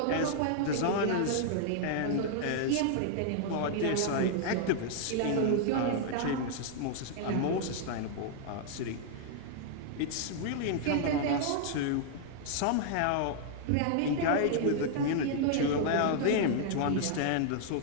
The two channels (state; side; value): different; both; correlation -0.01